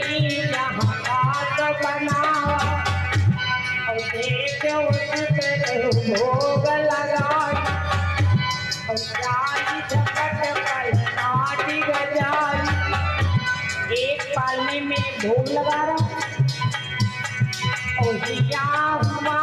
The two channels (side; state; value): both; identical; correlation 1.00